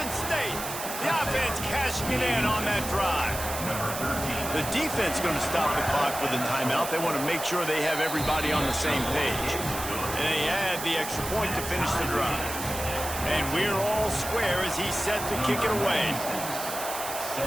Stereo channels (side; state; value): right; noise; hiss, 7 dB below the sound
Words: State. The offense cashing it in on that drive. The defense going to stop the clock with a timeout. They want to make sure they have everybody on the same page. And they add the extra point to finish the drive. And we're all square as he's set to kick it away.